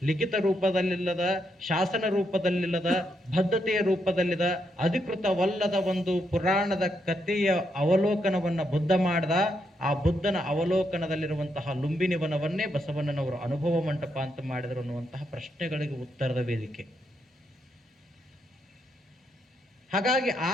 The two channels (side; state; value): both; normal; correlation 0.79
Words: ಲಿಖಿತ ರೂಪದಲ್ಲಿಲ್ಲದ, ಶಾಸನ ರೂಪದಲ್ಲಿಲ್ಲದ, ಬದ್ಧತೆಯ ರೂಪದಲ್ಲಿದ, ಅಧಿಕೃತವಲ್ಲದ ಒಂದು ಪುರಾಣದ ಕಥೆಯ ಅವಲೋಕನವನ್ನು ಬುದ್ಧ ಮಾಡ್ದ. ಆ ಬುದ್ಧನ ಅವಲೋಕನದಲ್ಲಿರುವಂತಹ ಲುಂಬಿನಿ ವನವನ್ನೇ ಬಸವಣ್ಣನವರು ಅನುಭವ ಮಂಟಪ ಅಂತ ಮಾಡಿದರು ಅನ್ನುವಂತಹ ಪ್ರಶ್ನೆಗಳಿಗೆ ಉತ್ತರದ ವೇದಿಕೆ. ಹಾಗಾಗಿ ಆ